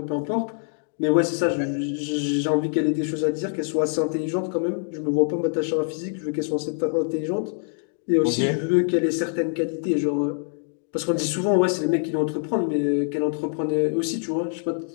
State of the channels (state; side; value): silent; right; 62 dB below the other